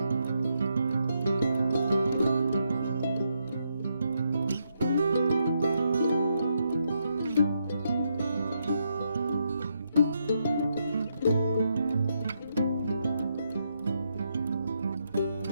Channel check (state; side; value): inverted; both; correlation -0.79